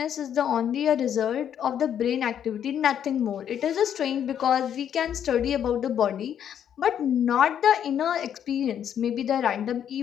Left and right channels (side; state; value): right; quieter; 9.3 dB